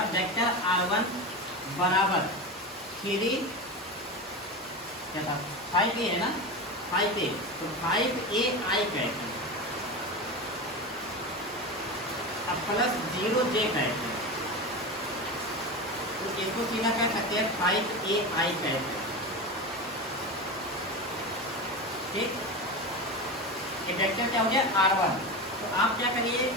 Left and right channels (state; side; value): normal; both; correlation 0.23